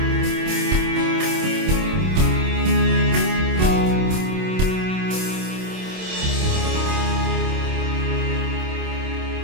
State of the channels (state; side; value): late; left; 26 ms